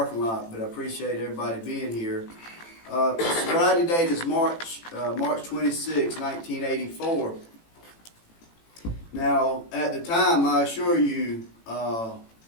lot, but I appreciate everybody being here. Sobriety date is March 26, 1984. Now, at the time, I assure you,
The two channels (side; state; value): right; late; 18 ms